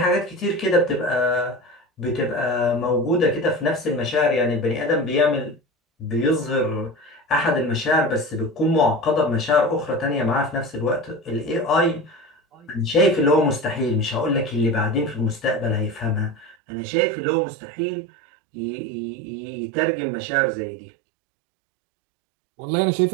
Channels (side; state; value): left; drops out; at 16.6 s